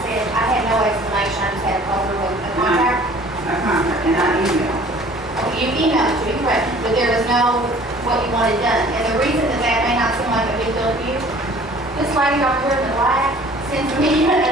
said, I had no explanation, I just had to call through a contact. A contract, and I emailed. You emailed it to me, correct, but there was no what you wanted done. And the reason that may not seem like a big deal to you, this lady up here in the black sends me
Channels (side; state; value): both; normal; correlation 0.50